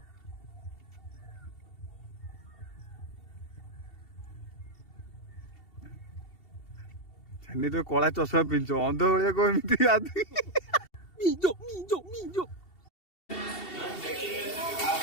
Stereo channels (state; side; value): late; right; 2.7 ms